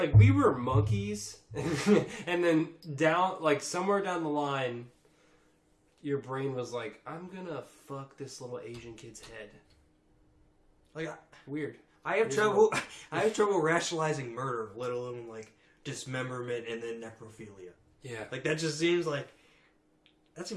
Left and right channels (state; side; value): identical; both; correlation 1.00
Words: we were monkeys, and then down, like somewhere down the line, your brain was like, "I'm gonna fuck this little Asian kid's head." Like, Weird. I have trouble. I have trouble rationalizing murder, let alone like dismemberment and then necrophilia. Yeah. Like that just seems like that